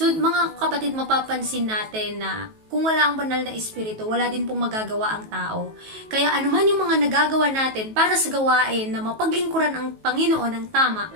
mga kapatid, mapapansin natin na kung wala ang banal na espiritu, wala din pong magagawa ang tao. Kaya anuman yung mga nagagawa natin para sa gawain na mapaglingkuran ang Panginoon ng tama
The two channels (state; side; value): late; left; 19 ms